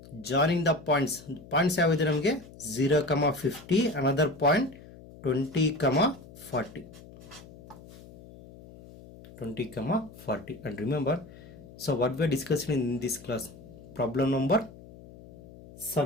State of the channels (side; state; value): left; noise; hum, 19 dB below the sound